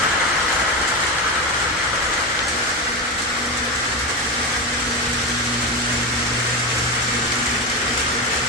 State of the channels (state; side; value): normal; both; correlation 0.17